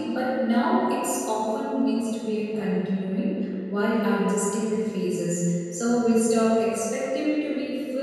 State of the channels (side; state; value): both; identical; correlation 1.00